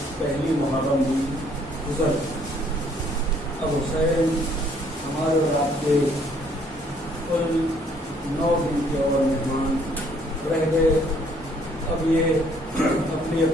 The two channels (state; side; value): normal; both; correlation 0.64